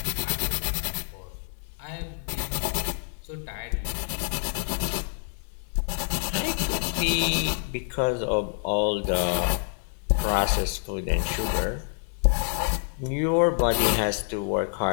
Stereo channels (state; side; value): silent; right; 60 dB below the other